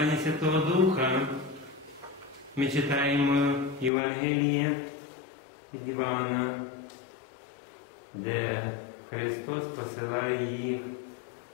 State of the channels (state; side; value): drops out; right; at 3.9 s